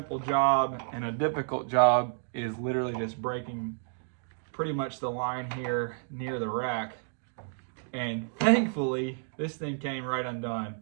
job and a difficult job is literally just breaking pretty much the line here near the rack. And thankfully, this thing came right undone.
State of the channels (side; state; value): left; silent; 57 dB below the other